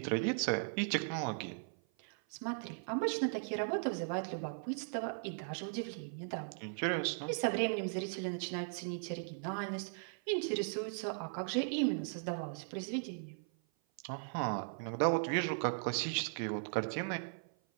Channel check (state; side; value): silent; left; 52 dB below the other